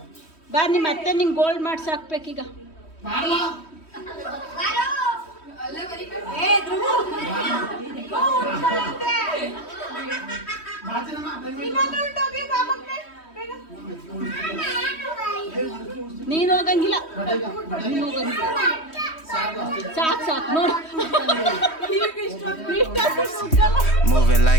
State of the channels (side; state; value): right; late; 3.1 ms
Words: ಬಾ ನಿಮ್ಮ ಅತ್ತೆ ನಿಂಗೆ ಗೋಲ್ಡ್ ಮಾಡ್ಸಿ ಹಾಕ್ಬೇಕೀಗ. ಮಾಡಲ್ಲ ನೀನು ಹೋಗಂಗಿಲ್ಲ, ನೀನು ಹೋಗಂಗಿಲ್ಲ. ಸಾಕು ನೋಡಿ. Moving